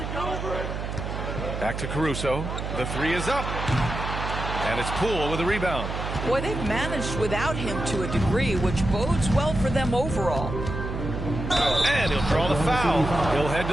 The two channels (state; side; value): noise; right; hum, 5 dB below the sound